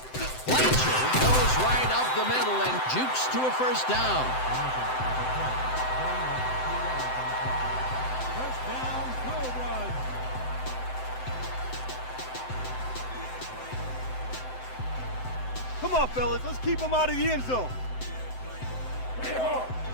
Blanchard goes right up the middle and jukes to a first down. First down, Cobras. Come on, fellas. Let's keep them out of the end zone.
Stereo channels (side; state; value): right; late; 7.8 ms